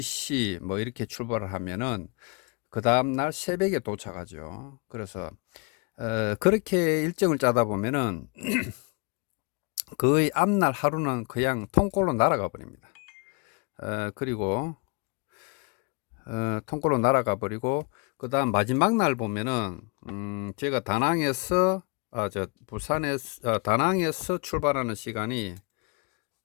뭐 이렇게 출발을 하면은 그 다음날 새벽에 도착하죠. 그래서 그렇게 일정을 짜다 보면은 거의 앞날 하루는 그냥 통꼴로 날아가 버립니다. 그리고 통꼴로 날아가 버리고 그 다음 마지막 날 보면은 제가 다낭에서 부산에서 다낭에서 출발하는 시간이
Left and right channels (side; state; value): right; quieter; 30.9 dB